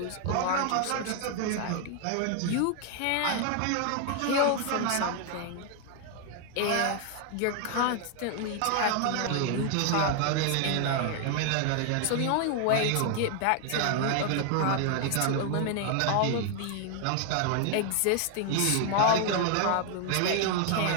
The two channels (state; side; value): different; both; correlation 0.00